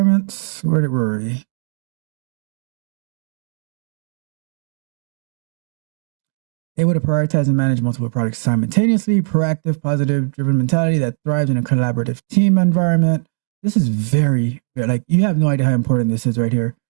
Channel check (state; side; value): silent; left; digital silence